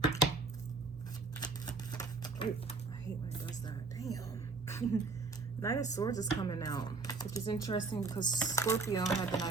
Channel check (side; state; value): left; quieter; 4.0 dB